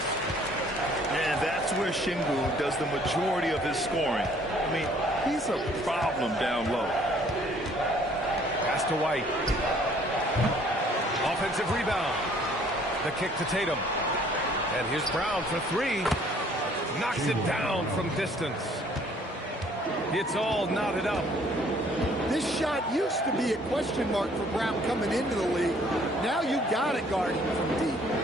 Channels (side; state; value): both; normal; correlation 0.59